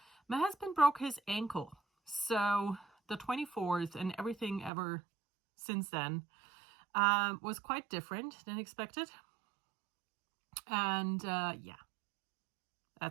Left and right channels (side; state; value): left; drops out; at 4.7 s